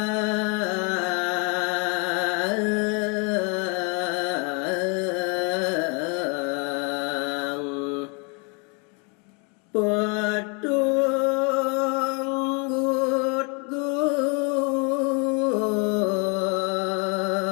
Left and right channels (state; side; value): quieter; right; 34.4 dB